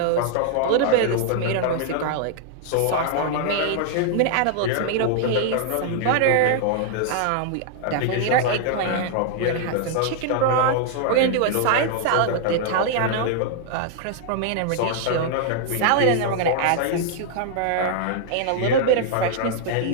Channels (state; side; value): different; both; correlation -0.01